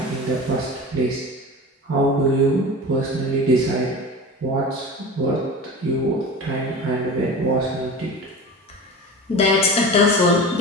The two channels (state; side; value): normal; both; correlation 0.32